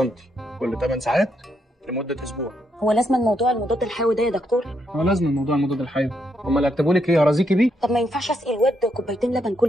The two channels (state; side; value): normal; both; correlation 0.78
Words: كل 8 ساعات لمده اسبوع. هو لازم الموضوع المضاد الحيوي ده يا دكتور؟ هو لازم موضوع المضاد الحيوي. هم اللي هيكتبوا لك ايه؟ هرازيكي بيه؟ طب ما ينفعش اسقي الواد كوبايتين لبن